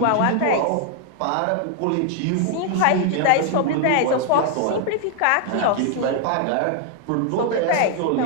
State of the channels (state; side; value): different; both; correlation 0.00